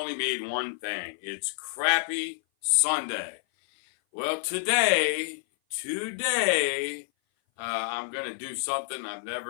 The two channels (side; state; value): right; silent; 56 dB below the other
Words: mean one thing. It's crappy Sunday. Well, today, I'm going to do something I've